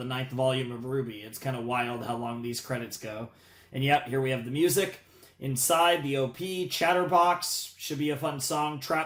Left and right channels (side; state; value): both; identical; correlation 1.00